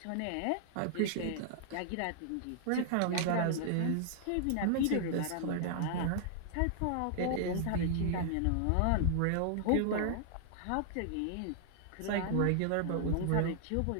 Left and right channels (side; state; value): both; different; correlation -0.01